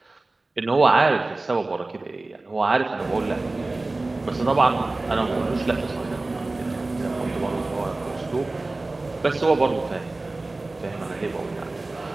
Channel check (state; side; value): quieter; left; 3.1 dB